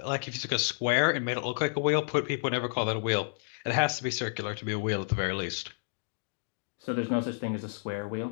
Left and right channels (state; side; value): silent; right; digital silence